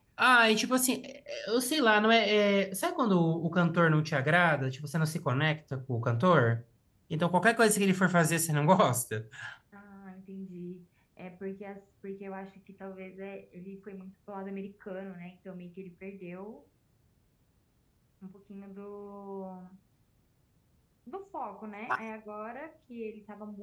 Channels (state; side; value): identical; both; correlation 1.00